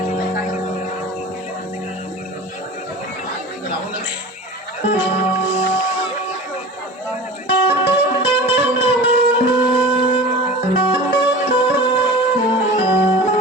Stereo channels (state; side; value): normal; both; correlation 0.35